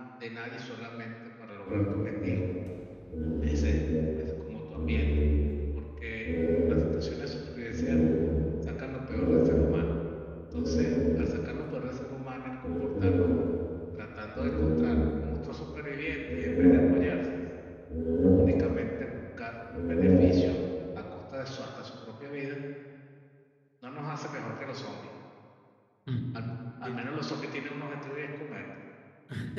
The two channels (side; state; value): both; identical; correlation 1.00